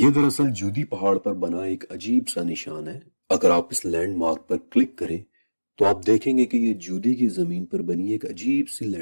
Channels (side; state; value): both; inverted; correlation -1.00